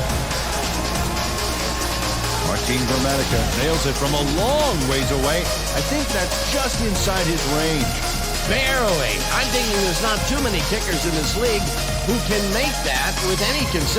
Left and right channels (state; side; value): identical; both; correlation 1.00